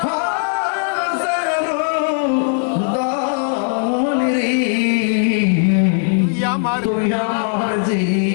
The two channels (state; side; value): silent; right; digital silence